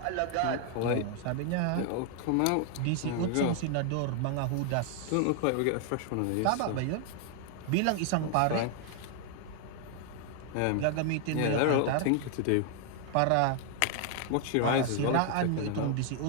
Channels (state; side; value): different; both; correlation 0.00